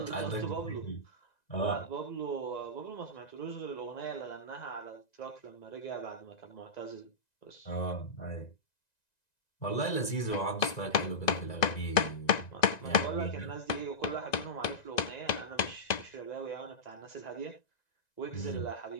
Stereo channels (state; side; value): late; right; 1.9 ms